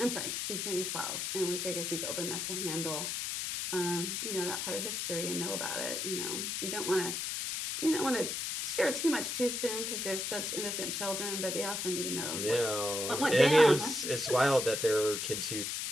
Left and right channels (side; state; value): left; noise; hiss, 2 dB below the sound